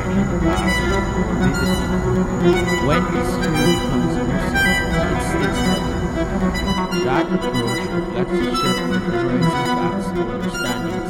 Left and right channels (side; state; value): both; identical; correlation 1.00